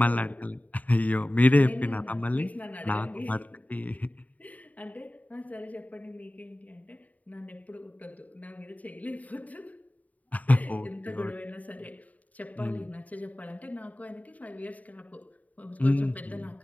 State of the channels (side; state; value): right; late; 0.073 ms